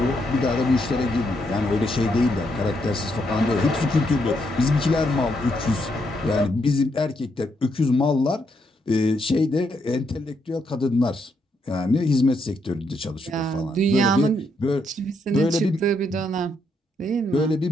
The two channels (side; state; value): both; normal; correlation 0.77